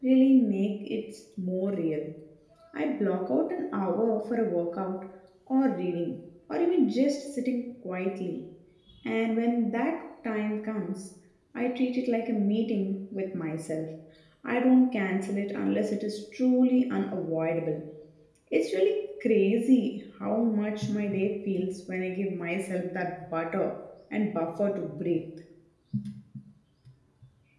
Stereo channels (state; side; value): identical; both; correlation 1.00